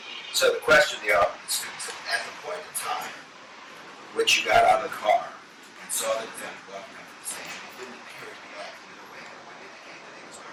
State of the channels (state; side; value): identical; both; correlation 1.00